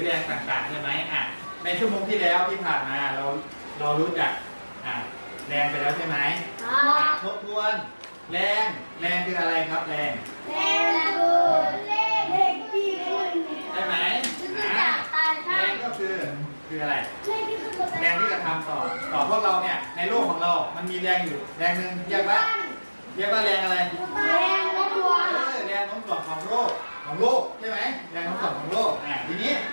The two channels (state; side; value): inverted; both; correlation -1.00